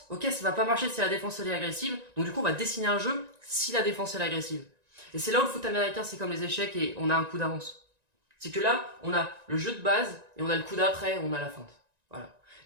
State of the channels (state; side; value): late; left; 1.9 ms